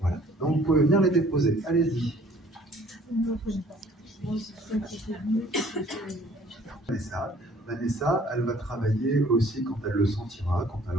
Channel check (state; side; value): normal; both; correlation 0.56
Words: Donc vous pouvez venir les déposer. Allez-y. Vanessa, elle va travailler aussi quand elle le sentira, quand elle